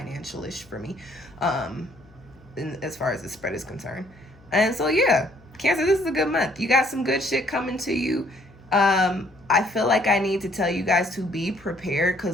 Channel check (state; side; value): noise; left; hum, 27 dB below the sound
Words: for me, as far as the spread is concerned. And so, yeah, Cancer, this is a good month. You got some good shit coming to you. I feel like I need to tell you guys to be prepared,